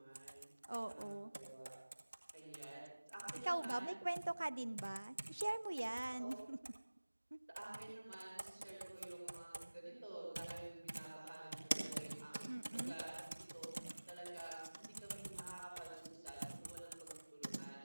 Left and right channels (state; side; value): inverted; both; correlation -1.00